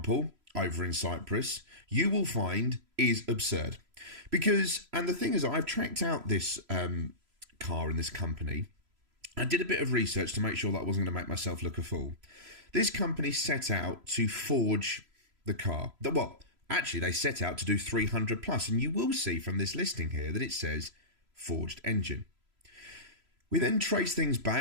over in Cyprus, you will find is absurd. Because, and the thing is, I've tracked out this car in this company, I did a bit of research to make sure that I wasn't going to make myself look a fool. This company set out to forge the car. Well, actually, they set out to do 300 plus, and you will see from this listing here that it says forged engine. We then trace things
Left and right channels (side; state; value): left; late; 3.0 ms